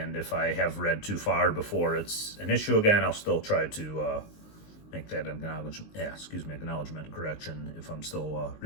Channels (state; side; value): late; right; 19 ms